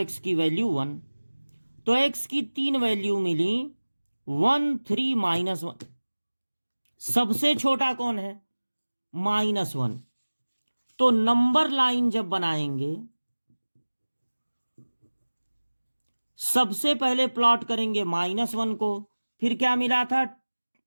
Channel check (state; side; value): inverted; both; correlation -1.00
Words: की वैल्यू 1। तो x की 3 वैल्यू मिली, 1 3 -1। सबसे छोटा कौन है, -1। तो नंबर लाइन जब बनाएंगे सबसे पहले प्लॉट करेंगे -1 को, फिर क्या मिला था